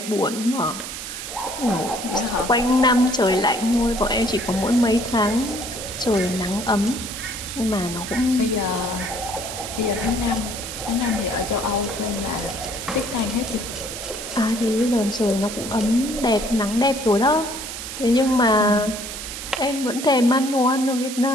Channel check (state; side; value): noise; right; hiss, 8 dB below the sound